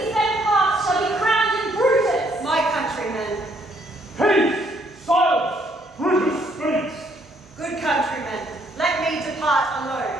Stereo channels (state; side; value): normal; both; correlation 0.68